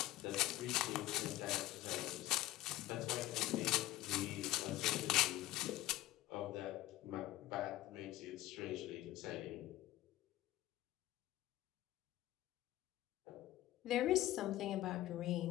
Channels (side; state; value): right; quieter; 15.9 dB